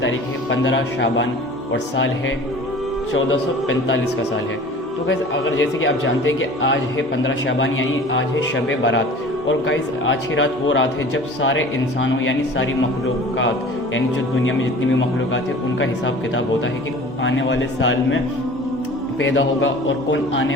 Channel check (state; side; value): normal; both; correlation 0.43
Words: तारीख है 15 शाबान और साल है 1445 का साल है। तो गाइस, अगर जैसे कि आप जानते हैं कि आज है 15 शाबान यानी आज है शब बारात। और गाइस, आज की रात वो रात है जब सारे इंसानों यानी सारी मखलूक़ात यानी जो दुनिया में जितनी भी मखलूक़ात है उनका हिसाब किताब होता है कि आने वाले साल में पैदा होगा और कौन